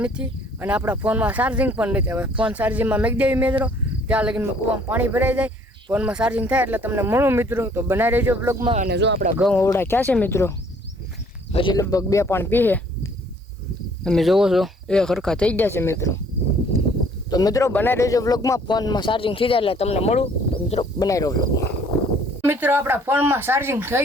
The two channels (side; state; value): both; normal; correlation 0.59